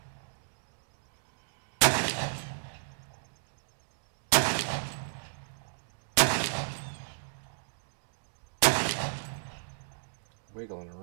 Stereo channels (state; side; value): silent; left; digital silence